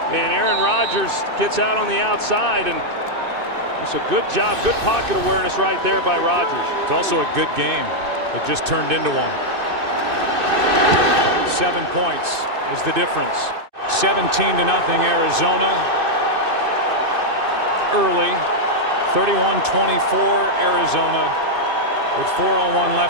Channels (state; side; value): late; left; 2.6 ms